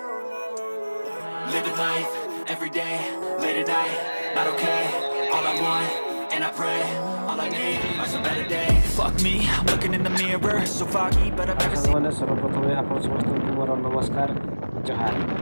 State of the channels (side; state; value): both; inverted; correlation -1.00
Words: life every day, late at night, not okay. All I want, and I pray, all I need are some better days. Fuck me, I'm looking in the mirror, so foggy, but I've never seen. सर्वप्रथम आप समस्त मोर नमस्कार जोहार